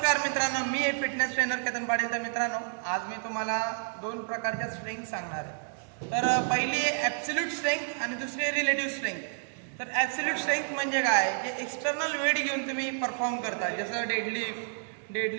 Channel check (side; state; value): left; silent; digital silence